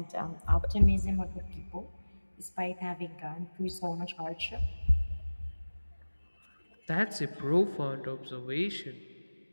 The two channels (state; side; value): inverted; both; correlation -1.00